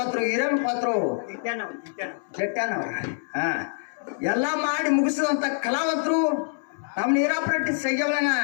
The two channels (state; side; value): silent; right; digital silence